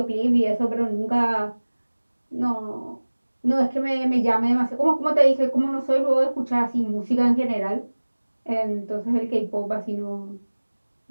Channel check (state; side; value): inverted; both; correlation -1.00